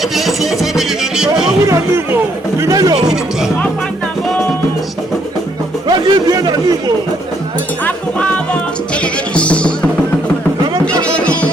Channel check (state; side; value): normal; both; correlation 0.71